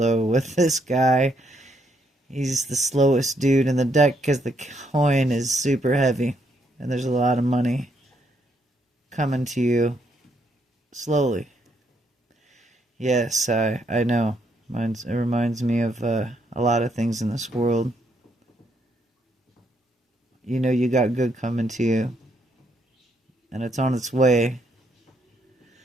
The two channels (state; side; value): normal; both; correlation 0.74